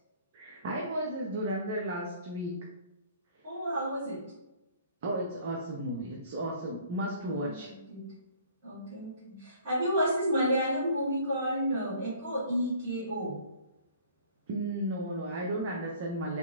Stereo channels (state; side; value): inverted; both; correlation -0.53